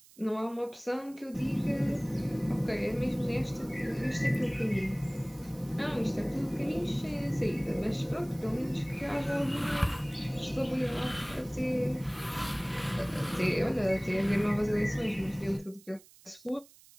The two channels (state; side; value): noise; right; hiss, 24 dB below the sound